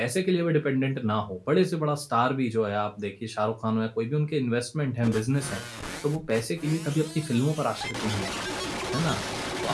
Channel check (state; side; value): identical; both; correlation 1.00